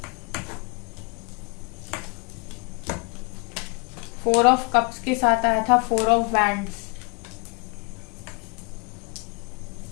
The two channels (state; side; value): quieter; right; 30.8 dB